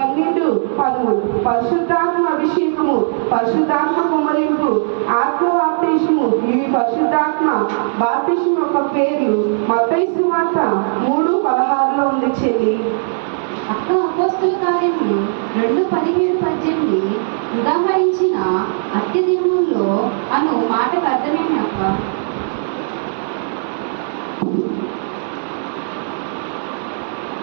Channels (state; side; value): silent; left; 68 dB below the other